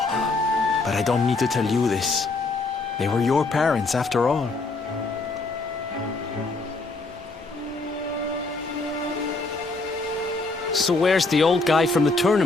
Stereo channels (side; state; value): right; quieter; 3.5 dB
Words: but I don't need to tell you this. They were your parents, after all. So where's the old guy from the